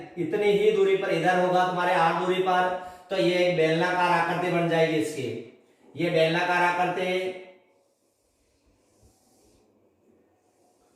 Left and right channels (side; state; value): both; identical; correlation 1.00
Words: इतनी ही दूरी पर इधर होगा तुम्हारे R दूरी पर। तो ये एक बेलनाकार आकृति बन जाएगी इसकी। ये बेलनाकार आकृति,